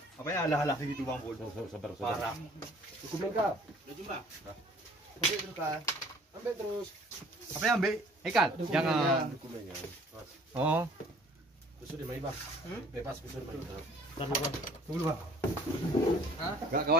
Apa ya alah-alah gitu Bang Pul. Sabar. Parah. Cukup lengkap. Udah jumlah. Ambil terus kan. Ambil terus. Apa yang ambil? Ikan. Jangan. Dokumennya. Oh. Kusur di Bang. Bebas kusur Bang. Tunggu Bang. Hah? Gak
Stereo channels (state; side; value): normal; both; correlation 0.54